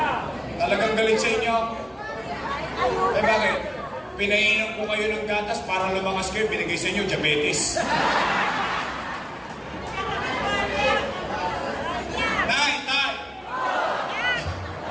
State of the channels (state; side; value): identical; both; correlation 1.00